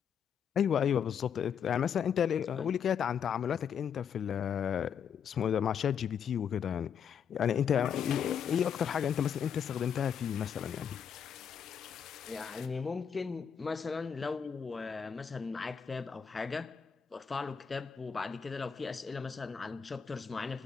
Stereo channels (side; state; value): right; quieter; 7.5 dB